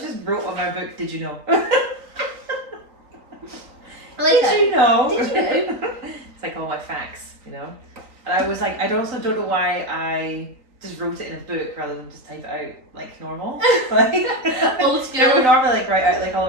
just wrote on my book, Did You Know? I like Did you know? Did you know? It's like all my facts, you know? And I was like, I also don't know why I just wrote it in a book rather than just type it out like normal. Like, Old school. we normally like write out like all of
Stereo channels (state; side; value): late; left; 3.9 ms